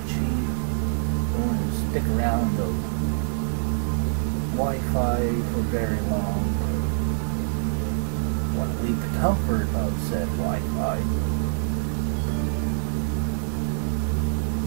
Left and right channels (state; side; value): silent; left; digital silence